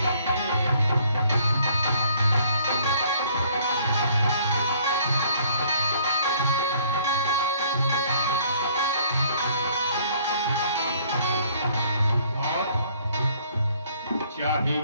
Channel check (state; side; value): inverted; both; correlation -0.60